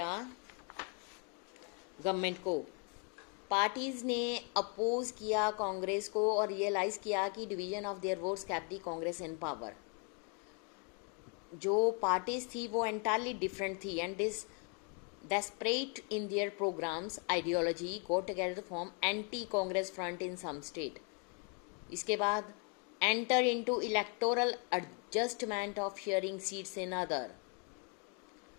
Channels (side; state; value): right; quieter; 38.0 dB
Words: गवर्नमेंट को. पार्टीज ने अपोज किया कांग्रेस को और रियलाइज किया कि division of their votes kept the Congress in power. जो पार्टीज थी वो एंटायरली डिफरेंट थी and this desperate in their programs ideology got together to form anti congress front in some state. इसके बाद enter into electoral adjustment of sharing seats in other.